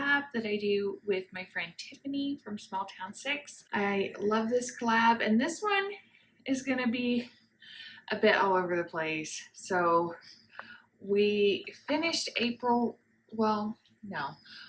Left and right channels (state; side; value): identical; both; correlation 1.00